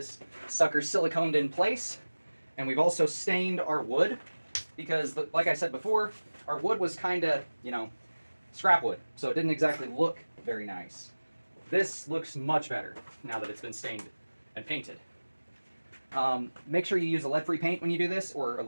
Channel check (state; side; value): inverted; both; correlation -1.00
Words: sucker siliconed in place, and we've also stained our wood because, like I said before, our wood was kind of, scrap wood, so it didn't exactly look very nice. This looks much better now that it's been stained and painted. Make sure you use a lead-free paint when you do this, or a